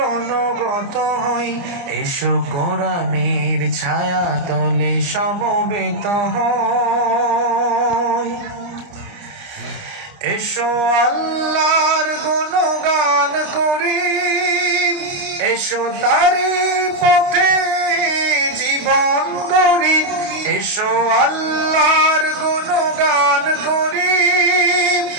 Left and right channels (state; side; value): late; left; 30 ms